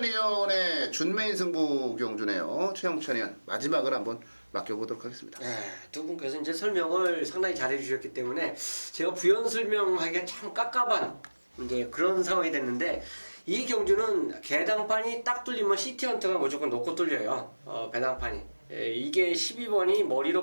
위원의 준메인 승부 경주네요. 최용찬 위원 마지막을 한번 맡겨보도록 하겠습니다. 네, 두 분께서 이제 설명을 상당히 잘해 주셨기 때문에 제가 부연 설명하기가 참 깝깝한 이제 그런 상황이 됐는데 이 경주는 개당판이 딱 뚫리면 시티헌터가 무조건 놓고 뚫려요. 배당판이. 이게 12번이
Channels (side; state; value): both; inverted; correlation -1.00